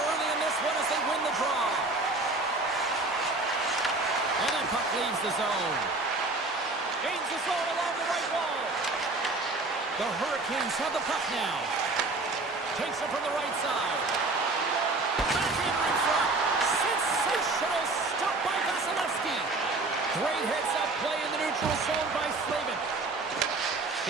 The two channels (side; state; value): left; quieter; 3.3 dB